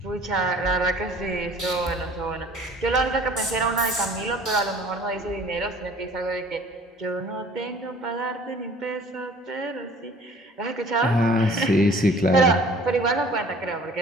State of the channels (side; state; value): both; normal; correlation 0.51